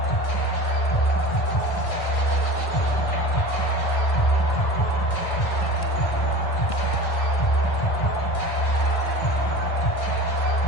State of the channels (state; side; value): late; right; 1.5 ms